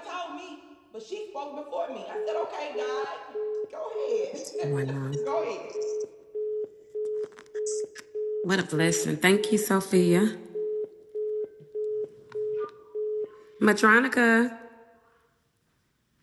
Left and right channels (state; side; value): identical; both; correlation 1.00